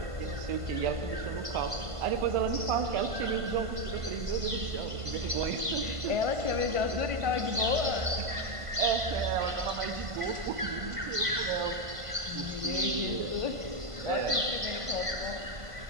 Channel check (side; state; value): left; late; 1.5 ms